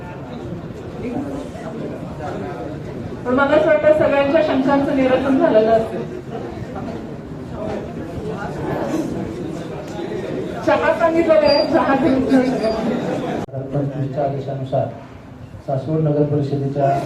पण मला असं वाटतं सगळ्यांच्या शंकांचं निरसन झालेलं असेल. चहा सांगितलेलं आहे, चहा घेऊन 2025च्या आदेशानुसार सासवड नगर परिषदेच्या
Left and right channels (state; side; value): identical; both; correlation 1.00